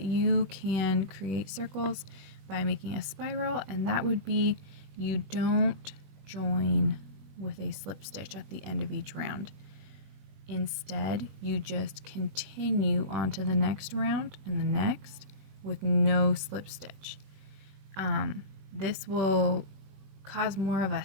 you can create circles by making a spiral, and that would be you don't join with a slip stitch at the end of each round. Instead, you just continue on to the next round and the next with no slip stitch. This will cause more of a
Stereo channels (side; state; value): left; late; 21 ms